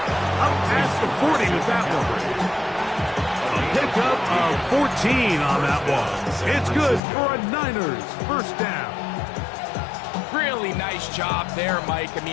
Up past the 40 with that one. A pickup of 14 on that one. It's good for a Niners 1st down. Really nice job there, Mike. I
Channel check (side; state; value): right; drops out; at 7.0 s